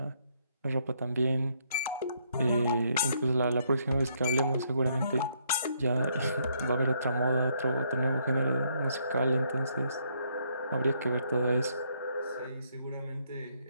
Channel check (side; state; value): both; inverted; correlation -0.72